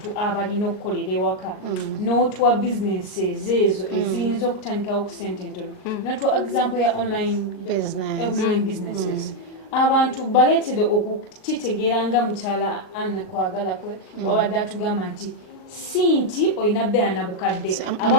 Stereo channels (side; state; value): right; late; 38 ms